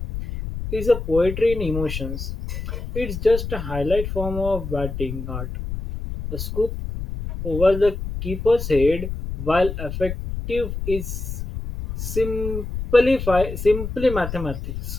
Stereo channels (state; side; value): noise; left; rumble, 6 dB below the sound